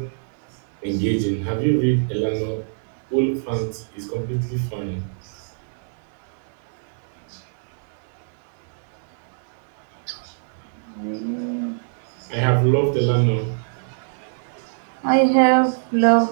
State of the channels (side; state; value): left; silent; digital silence